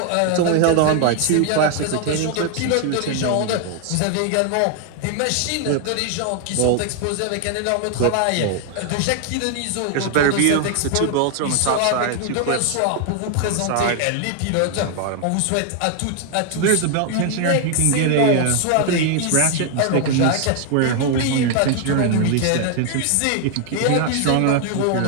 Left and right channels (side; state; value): both; different; correlation 0.00